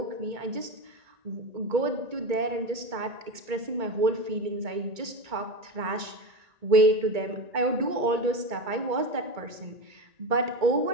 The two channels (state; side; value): late; left; 2.2 ms